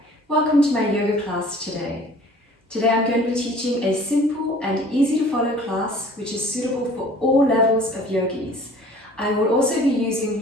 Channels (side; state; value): both; normal; correlation 0.50